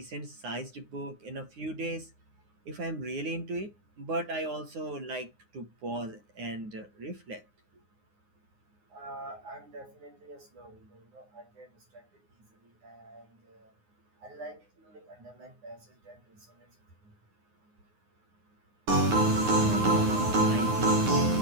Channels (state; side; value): late; left; 9.6 ms